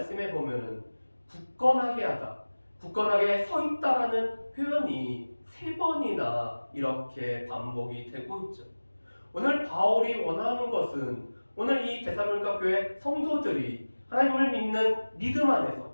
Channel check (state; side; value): inverted; both; correlation -1.00